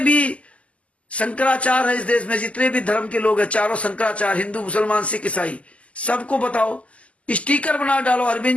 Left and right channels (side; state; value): right; late; 0.064 ms